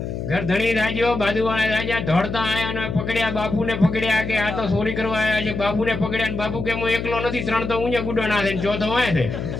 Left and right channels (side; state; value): left; noise; hum, 5 dB below the sound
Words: ઘર ધણી રાજો બાજુવાળા રાજા દોડતા આયા અને પકડ્યા, બાપુને પકડ્યા કે આ તો ચોરી કરવા આવ્યા છે. બાપુને પકડ્યા ને બાપુ કે હું એકલો નથી, 3 તો ઊંચે ગુડો ના થાય, ચોથો હોય છે.